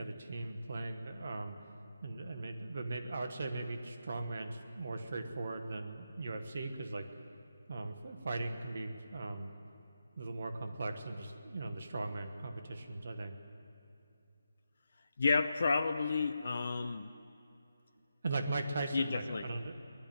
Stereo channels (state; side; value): inverted; both; correlation -0.86